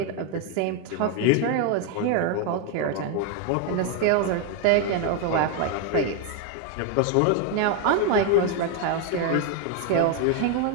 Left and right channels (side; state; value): both; different; correlation 0.01